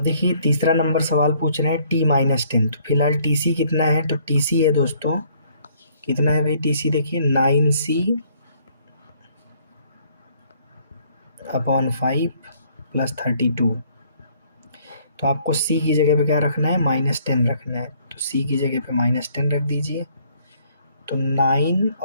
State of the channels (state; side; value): inverted; both; correlation -0.63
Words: देखिए तीसरा नंबर सवाल पूछ रहे हैं T-10, तो फिलहाल TC कितना है, तो TC है दोस्तों, कितना है भाई TC, देखिए 9C अपॉन 5 प्लस 32, तो आपको C की जगह पे क्या रखना है -10 रखना है, तो C की जगह पे -10 रख दीजिए। तो 9